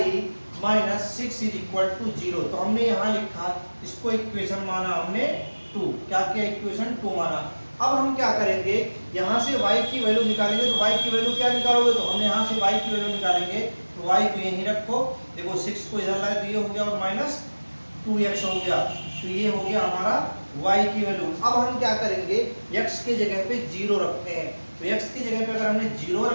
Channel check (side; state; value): both; inverted; correlation -1.00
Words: - 6 = 0। तो हमने यहाँ लिखा, इसको इक्वेशन माना हमने 2। क्या किया, इक्वेशन 2 माना। अब हम क्या करेंगे, यहाँ से y की वैल्यू निकालेंगे। तो y की वैल्यू क्या निकालोगे, तो हमने यहाँ से y की वैल्यू निकालेंगे तो y को यहीं रखो। देखो 6 को इधर लाए तो ये हो गया और -2x हो गया, तो ये हो गया हमारा y की वैल्यू। अब हम क्या करेंगे, x के जगह पे 0 रखते हैं। तो x की जगह पे अगर हमने 0